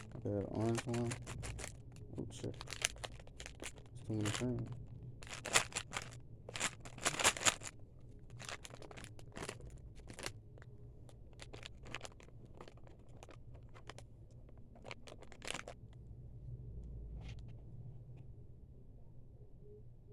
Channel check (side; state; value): both; identical; correlation 1.00